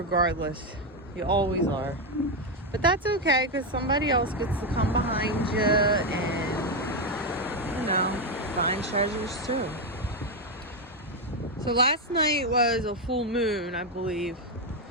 You always are. But that's okay, because somebody else gets to come behind you and, you know, find treasures too. So last night was a full moon, I believe.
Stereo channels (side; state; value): both; normal; correlation 0.06